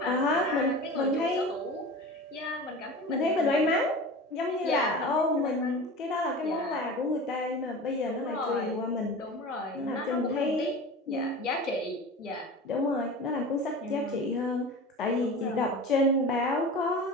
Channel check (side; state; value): both; normal; correlation 0.34